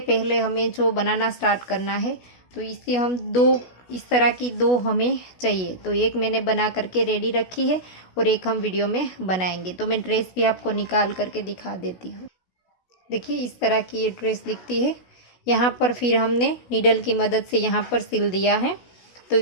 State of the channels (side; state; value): right; late; 16 ms